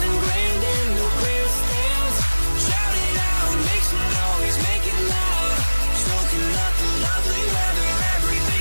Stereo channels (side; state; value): both; inverted; correlation -1.00